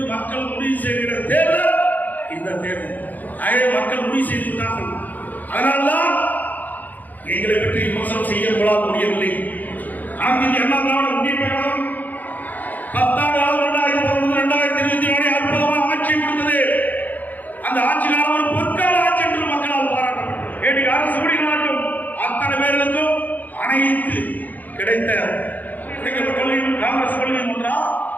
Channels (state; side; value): late; right; 0.082 ms